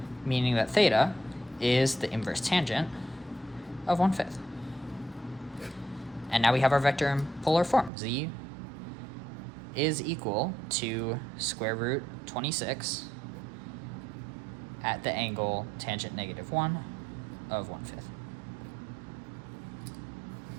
meaning that theta is the inverse tangent of 1/5. And now we have our vector in polar form. Z is equal to square root 26 at the angle tangent -1 of 1/5.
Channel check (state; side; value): drops out; left; at 7.9 s